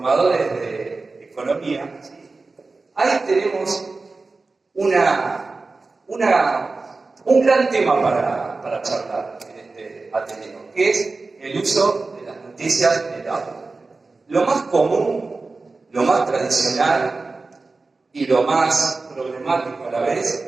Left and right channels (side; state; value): left; quieter; 3.7 dB